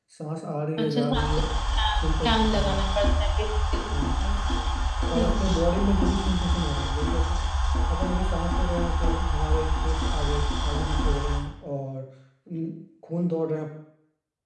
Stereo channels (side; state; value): both; identical; correlation 1.00